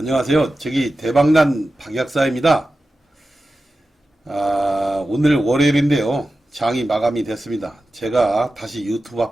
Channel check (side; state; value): both; normal; correlation 0.93